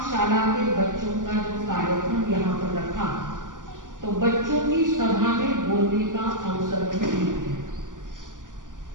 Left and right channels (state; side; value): late; left; 0.88 ms